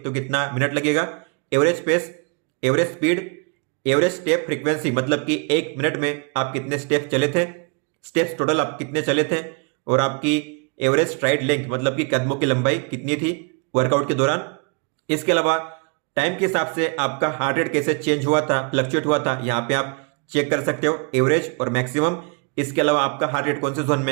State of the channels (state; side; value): quieter; left; 34.3 dB